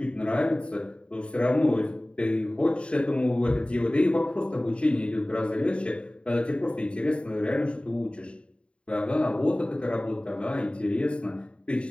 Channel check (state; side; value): late; right; 0.057 ms